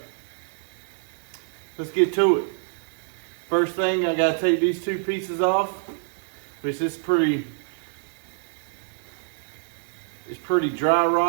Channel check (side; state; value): left; silent; 61 dB below the other